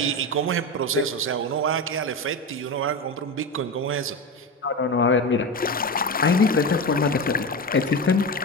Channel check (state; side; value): normal; both; correlation 0.20